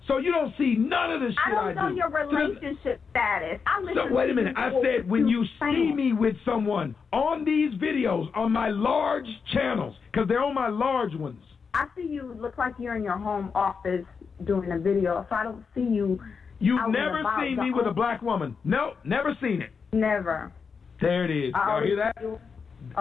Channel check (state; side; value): quieter; right; 5.6 dB